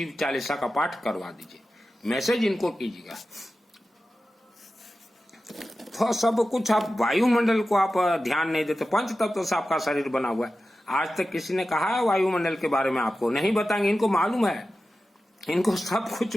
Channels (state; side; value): normal; both; correlation 0.93